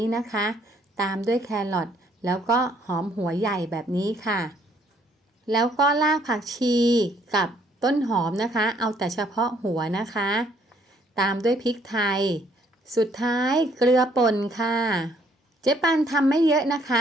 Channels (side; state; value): both; normal; correlation 0.66